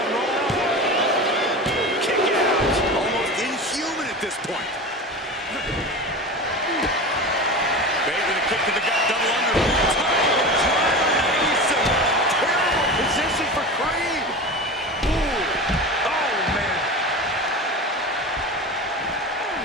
Roll up. Kick out. Almost inhuman at this point. Bate with a kick to the gut. Double under. Terrible position for Creed. Ooh. Oh, man.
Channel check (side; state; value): both; normal; correlation 0.29